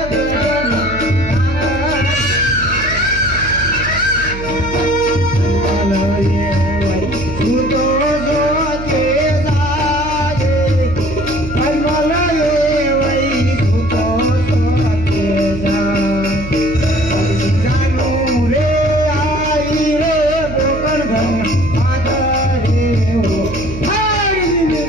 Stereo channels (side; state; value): right; noise; hum, 10 dB below the sound